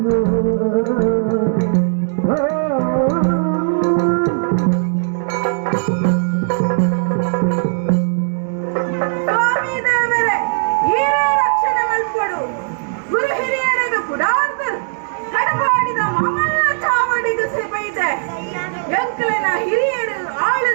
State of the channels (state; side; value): silent; left; digital silence